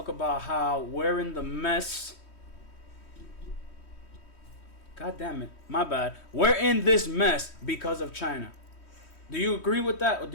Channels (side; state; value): right; late; 3.1 ms